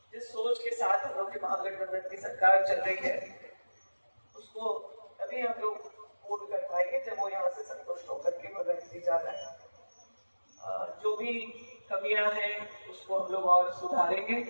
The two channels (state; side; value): inverted; both; correlation -1.00